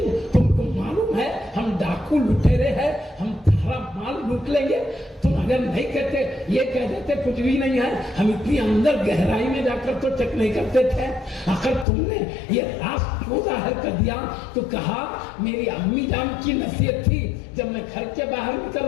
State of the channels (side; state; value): right; drops out; at 11.9 s